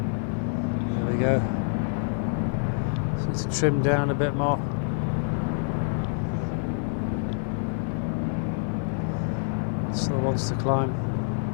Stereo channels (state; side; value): silent; right; 55 dB below the other